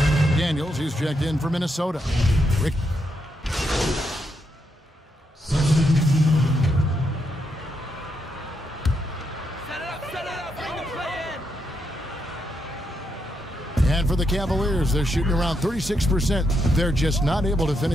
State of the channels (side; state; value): both; normal; correlation 0.81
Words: Daniels, he's checked in for Minnesota. Rick. And for the Cavaliers, they're shooting around 36%. They're just not able to